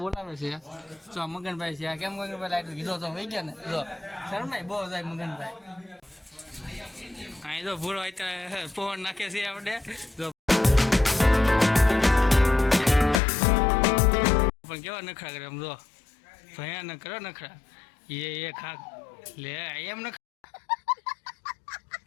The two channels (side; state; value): right; drops out; at 13.2 s